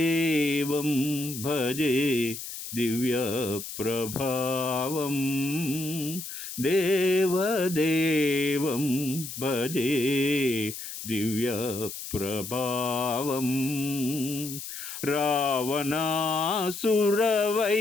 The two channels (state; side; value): noise; left; hiss, 9 dB below the sound